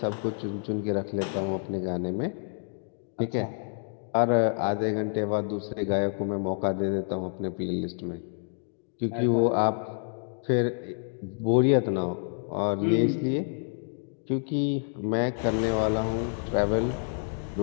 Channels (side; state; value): right; silent; digital silence